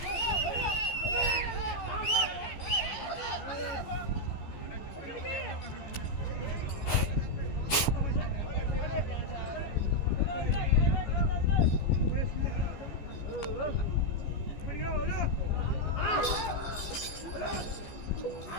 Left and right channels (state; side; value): late; right; 14 ms